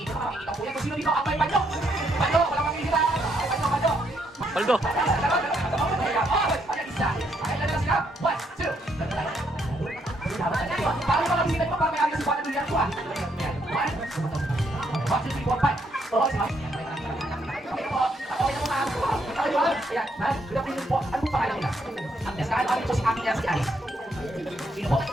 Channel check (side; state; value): both; normal; correlation 0.74